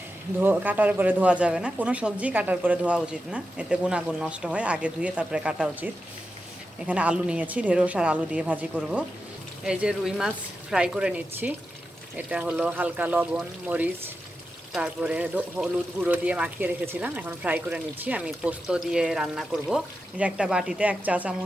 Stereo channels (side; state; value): both; normal; correlation 0.90